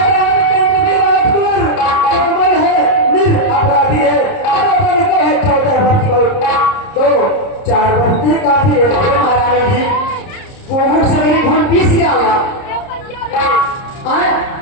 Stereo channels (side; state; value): right; late; 30 ms